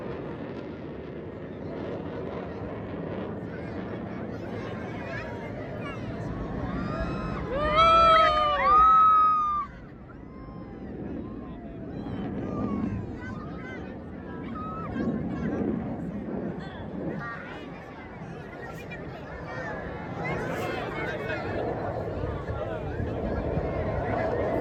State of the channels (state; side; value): identical; both; correlation 1.00